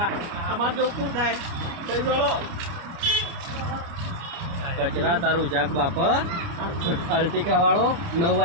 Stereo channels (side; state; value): left; late; 29 ms